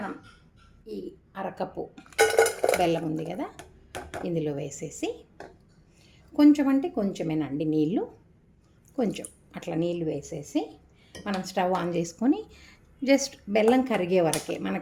ఈ అరకప్పు బెల్లం ఉంది కదా, ఇందులో వేసేసి కొంచెం అంటే కొంచెమేనండి నీళ్ళు, కొంచెం అట్లా నీళ్ళు వేసేసి మనం స్టవ్ ఆన్ చేసుకొని జస్ట్ బెల్లం కరిగే వరకే,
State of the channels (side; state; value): both; identical; correlation 1.00